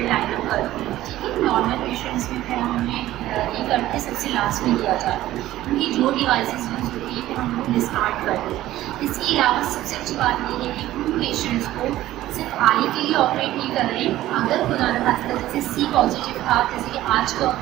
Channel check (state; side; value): quieter; left; 14.8 dB